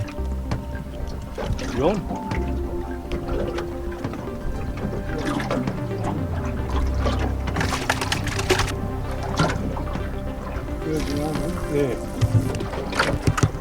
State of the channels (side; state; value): both; identical; correlation 1.00